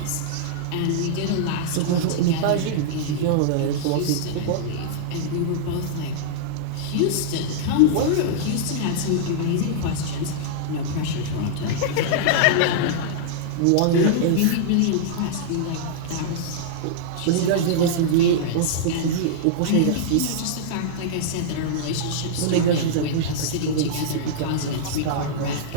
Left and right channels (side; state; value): both; different; correlation -0.02